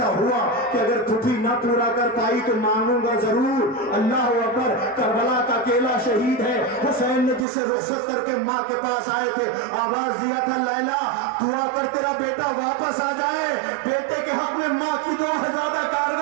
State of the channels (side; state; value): left; drops out; at 7.5 s